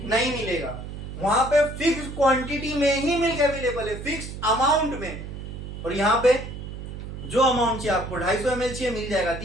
नहीं मिलेगा। वहां पे फिक्स क्वांटिटी में ही मिल्क अवेलेबल है, फिक्स अमाउंट में। और यहाँ पे जो अमाउंट चाहिए आपको, 250 ml चाहिए, मिल जाएगा,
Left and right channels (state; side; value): noise; right; hum, 9 dB below the sound